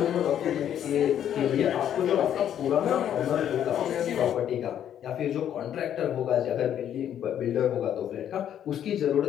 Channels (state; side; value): quieter; right; 10.1 dB